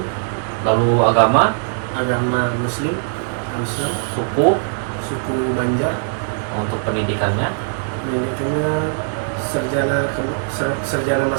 Lalu agama? agama Muslim, Islam, Suku? suku Banjar, Untuk pendidikannya? pendidikannya sarjana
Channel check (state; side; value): silent; left; digital silence